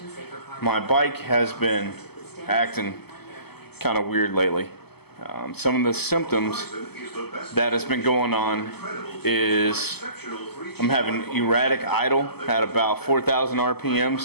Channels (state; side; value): late; right; 0.96 ms